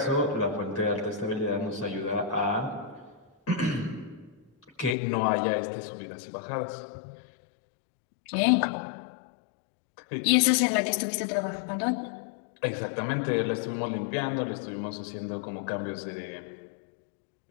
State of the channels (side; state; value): right; drops out; at 5.0 s